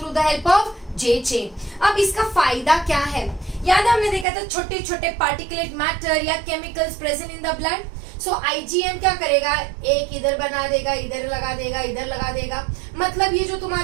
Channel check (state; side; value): drops out; left; at 4.2 s